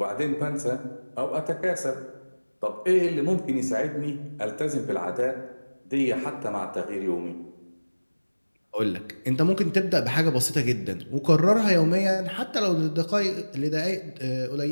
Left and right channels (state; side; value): inverted; both; correlation -1.00